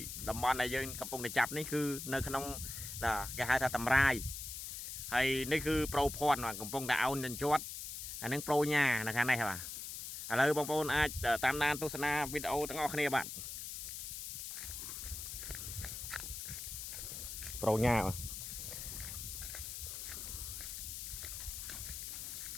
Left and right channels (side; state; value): left; noise; hiss, 7 dB below the sound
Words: តំបន់ដែលយើងកំពុងតែចាប់នេះគឺនៅក្នុងគេហៅថាតម្រាយហើយនេះគឺប្រូភ័ណ្ឌកំពុងតែអោនជន់អានឹងប្រូញ៉ានៅខាងនេះបាទឥឡូវបងប្អូនអាចតាមដានទស្សនាវីដេអូទាំងអស់គ្នាបាទប្រូញ៉ា